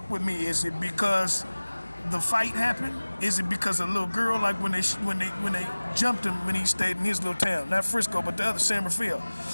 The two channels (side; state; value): both; inverted; correlation -1.00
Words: with me. Is it because the fight happened? Is it because a little girl, like when they jumped him when he stayed in his little town, not Frisco, but the other San Rafael